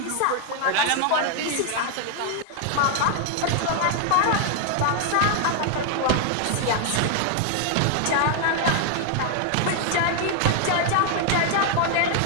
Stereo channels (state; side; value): different; both; correlation 0.00